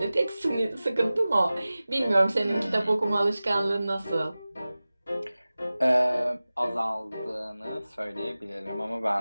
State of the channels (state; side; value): inverted; both; correlation -0.97